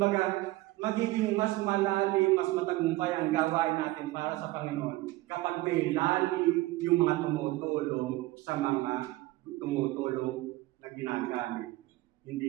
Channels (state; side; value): quieter; left; 18.7 dB